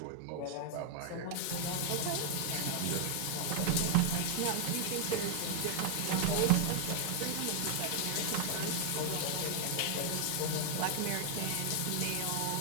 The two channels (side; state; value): both; different; correlation 0.00